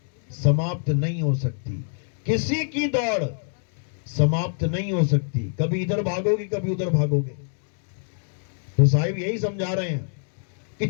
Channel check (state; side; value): silent; right; digital silence